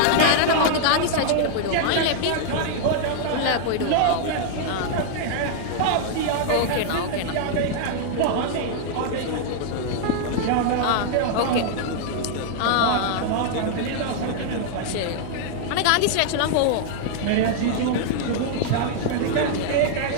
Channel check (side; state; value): both; different; correlation -0.01